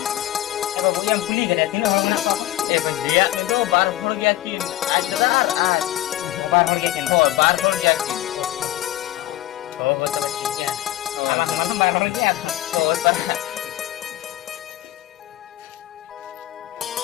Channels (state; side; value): quieter; right; 15.2 dB